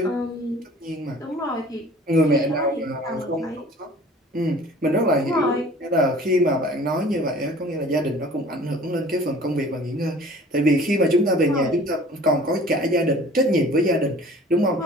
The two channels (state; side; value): normal; both; correlation 0.48